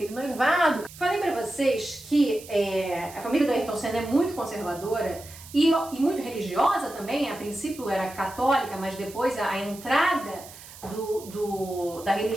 noivado. Falei para vocês que a família do Ayrton Senna é muito conservadora e muito religiosa também. A princípio era católica, mas depois a entrada da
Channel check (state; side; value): noise; right; hiss, 17 dB below the sound